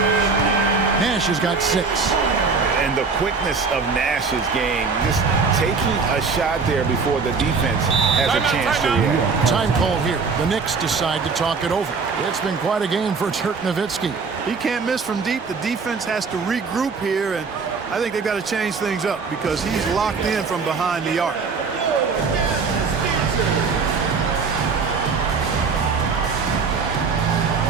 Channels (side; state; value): left; quieter; 4.9 dB